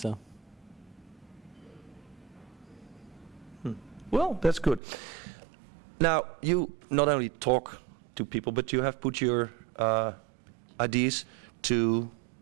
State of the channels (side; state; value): left; drops out; at 4.8 s